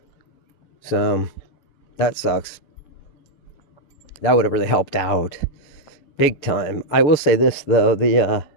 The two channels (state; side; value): late; right; 6.8 ms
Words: So, that sucks. That would have really helped out. Big time. I will say this, though. The